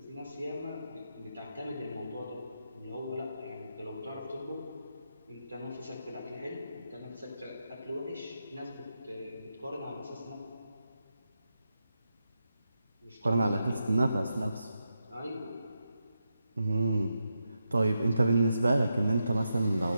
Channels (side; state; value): both; inverted; correlation -0.87